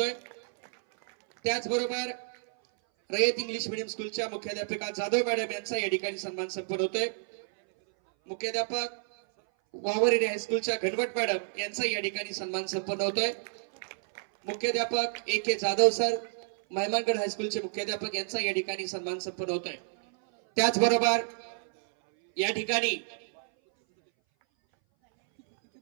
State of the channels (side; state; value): left; silent; 58 dB below the other